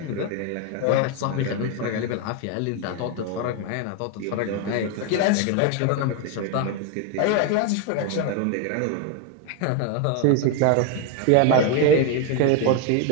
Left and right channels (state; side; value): different; both; correlation 0.01